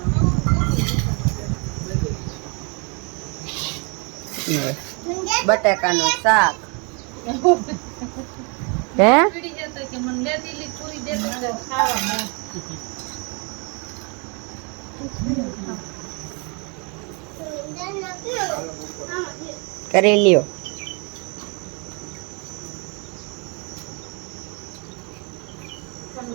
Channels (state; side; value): quieter; left; 33.3 dB